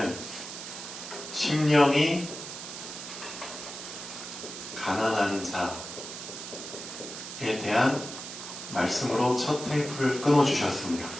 심령이 가난한 자에 대한 말씀으로 첫 테이프를 끊어주셨습니다.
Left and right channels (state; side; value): noise; right; hiss, 9 dB below the sound